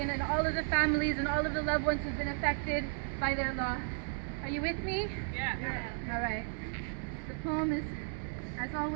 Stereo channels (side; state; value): left; silent; 55 dB below the other